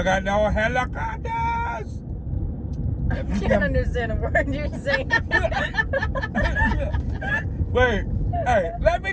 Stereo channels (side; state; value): both; identical; correlation 1.00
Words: at those helicopters! I can't understand a word you're saying. Wait, hey, let me